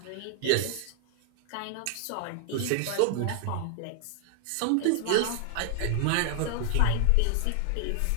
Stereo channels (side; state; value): both; different; correlation 0.00